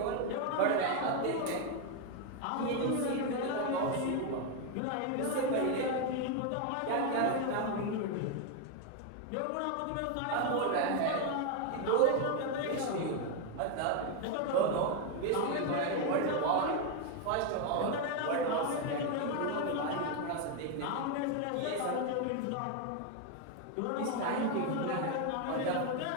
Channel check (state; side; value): different; both; correlation 0.01